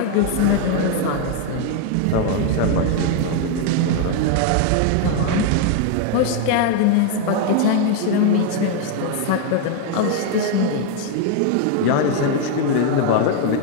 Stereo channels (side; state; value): both; different; correlation 0.01